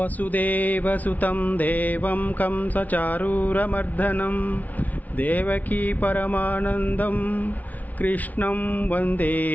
దేవం కంసచారూరమర్దనం దేవకీ పరమానందం కృష్ణం వందే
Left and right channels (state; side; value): late; right; 0.075 ms